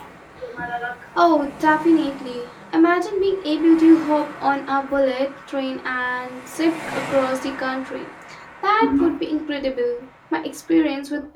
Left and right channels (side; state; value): both; identical; correlation 1.00